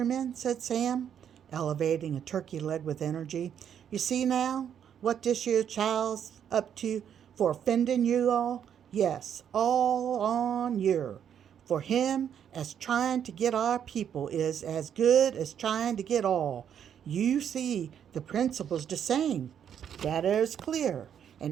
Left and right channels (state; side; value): quieter; left; 8.8 dB